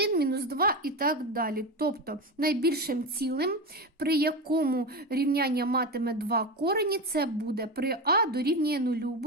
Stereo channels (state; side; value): normal; both; correlation 0.20